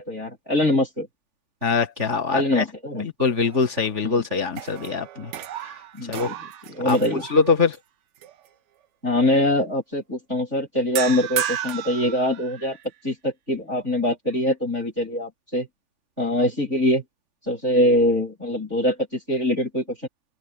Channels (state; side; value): late; left; 3.4 ms